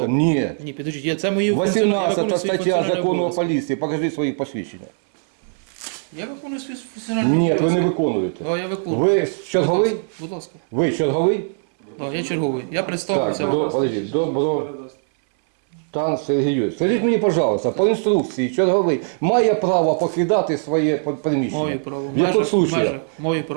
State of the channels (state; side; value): silent; left; 65 dB below the other